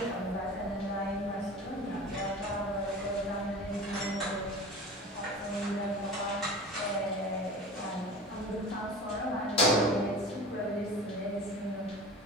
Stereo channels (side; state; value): both; normal; correlation 0.36